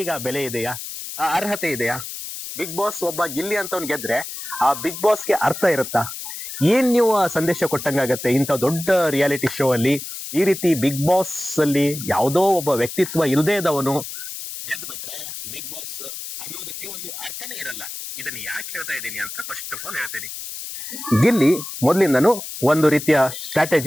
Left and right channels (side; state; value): left; noise; hiss, 9 dB below the sound